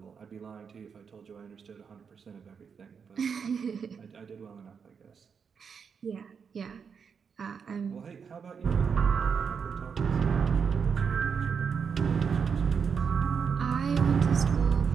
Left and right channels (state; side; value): quieter; left; 6.4 dB